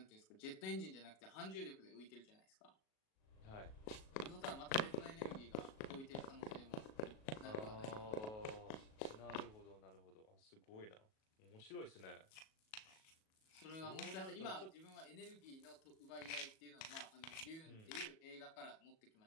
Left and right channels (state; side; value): late; right; 37 ms